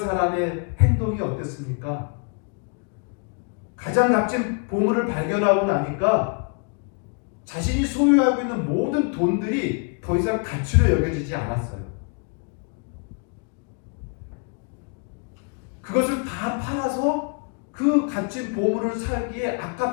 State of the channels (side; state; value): right; quieter; 38.5 dB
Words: 행동이 어땠습니까? 가장 값진 보물을 발견하고 나니까 자신이 소유하고 있는 모든 돈들이 더 이상 가치로 여겨지지 않았어요. 그것을 다 팔아서 그 값진 보물을 살기에